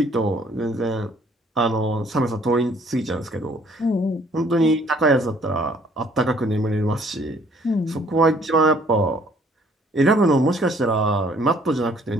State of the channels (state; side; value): normal; both; correlation 0.61